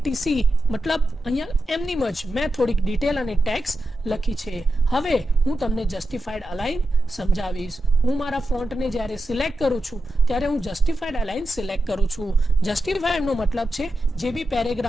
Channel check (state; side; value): normal; both; correlation 0.90